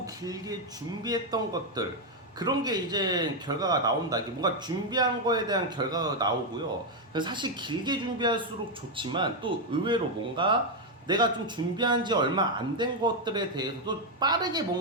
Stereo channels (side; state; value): both; normal; correlation 0.03